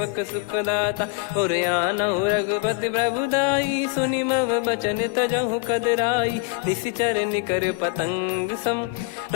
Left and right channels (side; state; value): right; quieter; 26.1 dB